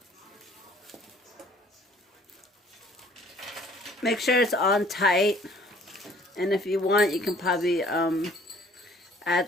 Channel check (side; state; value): both; normal; correlation 0.56